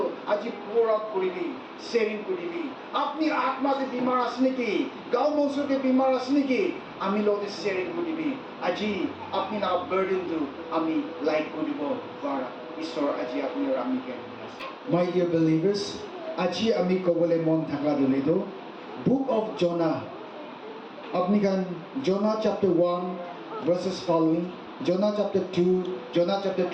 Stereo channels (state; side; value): identical; both; correlation 1.00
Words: আজি pour out কৰিবি শ্বেয়াৰিং কৰিবি আপনি আত্মাতে বিমাৰ আছে নেকি গাঁও মঞ্চতে বিমাৰ আছে নেকি আমি লগতে শ্বেয়াৰিং কৰিবি আজি আপনি লগা বাৰ্ডেনটো আমি লাইট কৰিব পাৰা ঈশ্বৰ আজি আপুনি আৰু আমিকে My dear believers, আজি আমি ক'বলৈ মন থাকা দিলেতো Book of Jonah আপনি kan Jonah chapter 1 verses following Jonah chapter 2 Jonah chapter